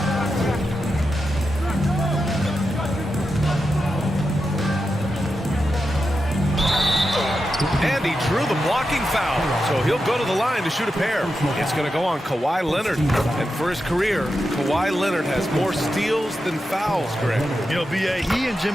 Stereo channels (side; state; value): both; normal; correlation 0.88